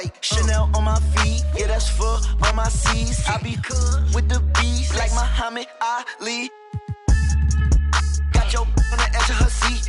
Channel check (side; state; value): both; identical; correlation 1.00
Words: Chanel on my feet, yeah that's for all my C's. I be cool with the beast like Muhammad Ali. Got your on the edge of her